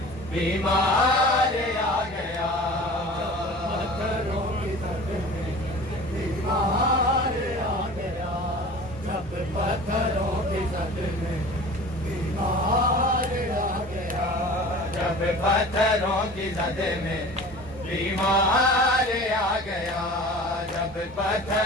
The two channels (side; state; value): both; normal; correlation 0.40